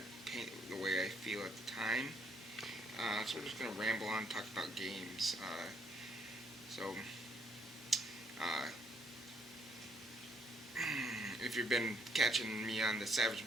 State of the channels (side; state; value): both; normal; correlation 0.69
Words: paint the way I feel at the time. So we're just gonna ramble on, talk about games. If you've been catching me on the